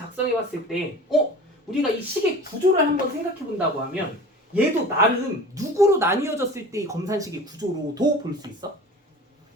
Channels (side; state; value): both; normal; correlation 0.39